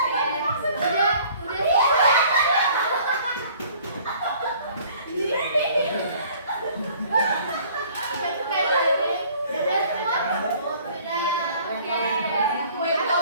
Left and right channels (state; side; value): inverted; both; correlation -0.54